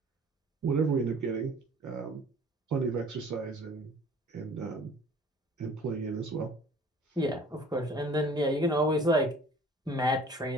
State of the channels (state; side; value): normal; both; correlation 0.50